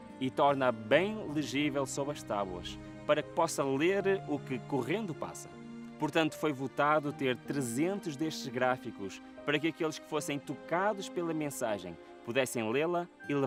e torna bem legível sob as tábuas, para que possa ler o que correndo passa. Portanto, foi votado ter 300 destes gráficos, para que aqueles que fossem tocados pela mensagem pudessem lê-la e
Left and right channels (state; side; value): identical; both; correlation 1.00